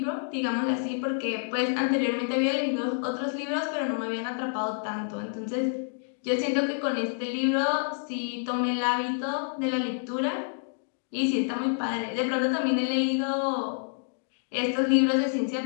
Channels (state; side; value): silent; right; digital silence